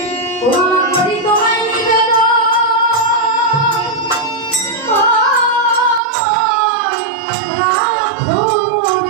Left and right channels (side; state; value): left; drops out; at 6.0 s